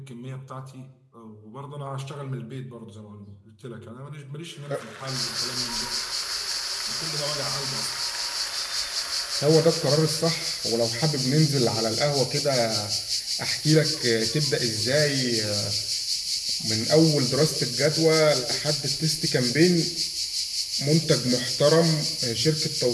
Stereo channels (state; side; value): identical; both; correlation 1.00